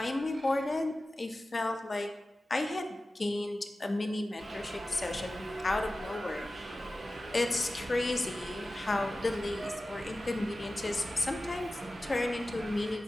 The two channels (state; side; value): normal; both; correlation 0.95